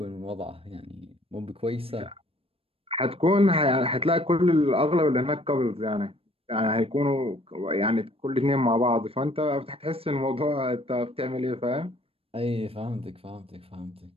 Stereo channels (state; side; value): late; left; 0.28 ms